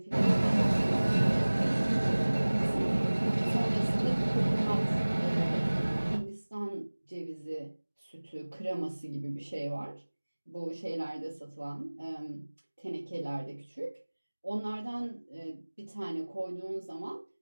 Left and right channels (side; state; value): both; inverted; correlation -1.00